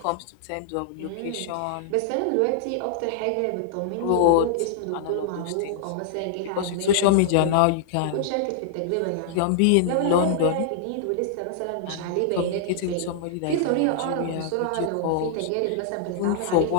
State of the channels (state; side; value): different; both; correlation -0.01